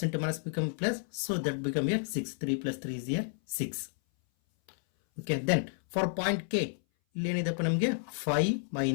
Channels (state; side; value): silent; right; 57 dB below the other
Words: into minus become plus, so that become here 6, 3 plus 3 is here 6. Okay, then for point k ಇಲ್ಲಿ ಏನಿದೆಪ್ಪ ನಮಗೆ 5